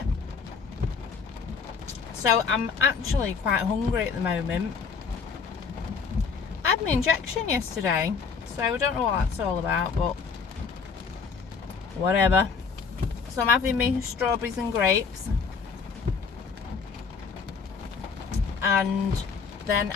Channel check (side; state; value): right; quieter; 5.5 dB